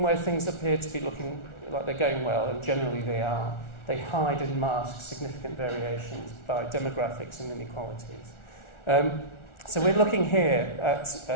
where things appear to be looking like they're going well, and generally they are, they hide and mask significant variations by demographics and inequalities. So we're looking here at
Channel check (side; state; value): right; late; 1.4 ms